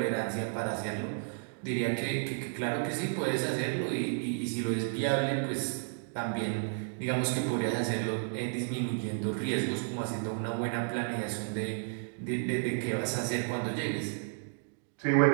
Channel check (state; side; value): silent; left; digital silence